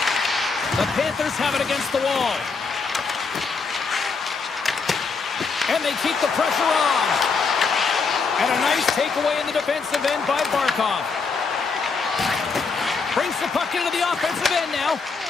The Panthers have it against the wall. And they keep the pressure on. And a nice takeaway in the defensive end by Barkov. Brings the puck into the offensive end now.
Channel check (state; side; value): quieter; right; 4.8 dB